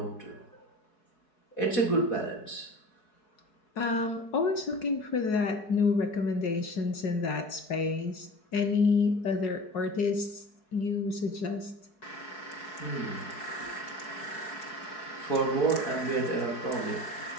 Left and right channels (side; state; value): right; late; 4.7 ms